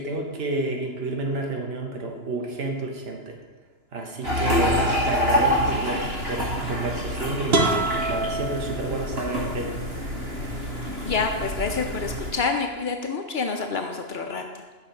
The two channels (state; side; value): late; left; 2.9 ms